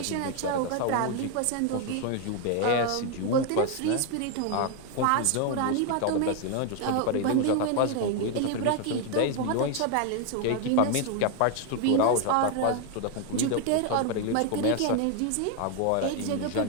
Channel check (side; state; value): both; different; correlation 0.01